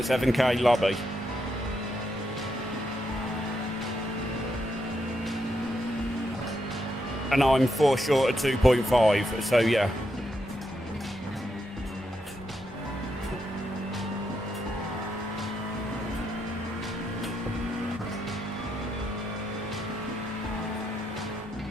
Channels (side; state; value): both; normal; correlation 0.81